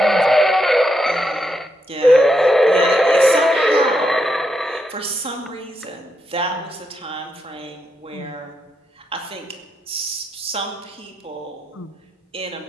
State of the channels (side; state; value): both; normal; correlation 0.82